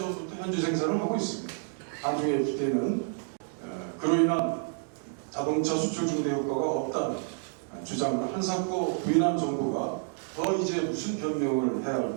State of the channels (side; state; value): left; silent; 58 dB below the other